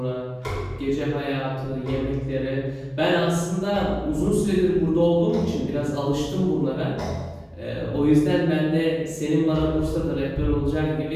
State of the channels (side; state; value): both; identical; correlation 1.00